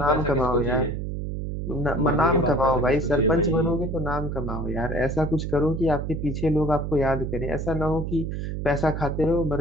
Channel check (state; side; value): noise; right; hum, 4 dB below the sound